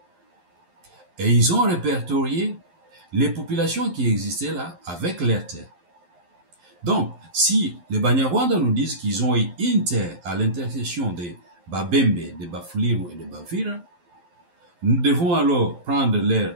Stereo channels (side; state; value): left; late; 11 ms